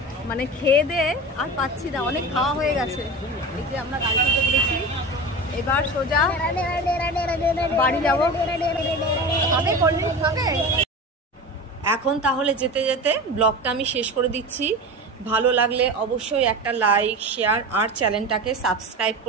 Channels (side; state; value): both; normal; correlation 0.29